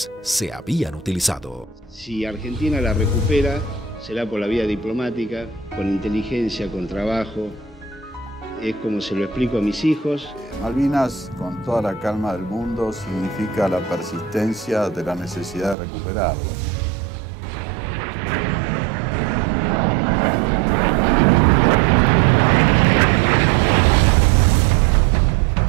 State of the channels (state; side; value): drops out; left; at 15.8 s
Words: se habían utilizado. Si Argentina la recupera, será por la vía diplomática, con inteligencia, con trabajo. Es como se lo explico a mis hijos. Malvinas, con toda la calma del mundo, significa la persistencia de la necesidad de recuperarlas.